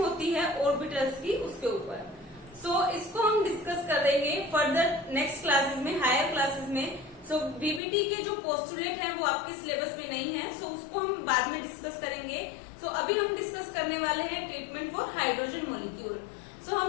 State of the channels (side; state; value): right; drops out; at 7.8 s